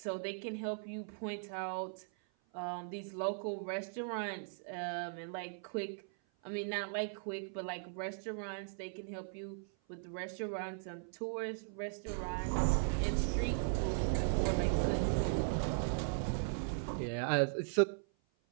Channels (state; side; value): silent; left; 52 dB below the other